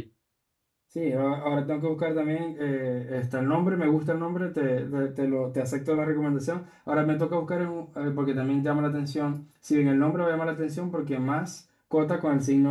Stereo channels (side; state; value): both; identical; correlation 1.00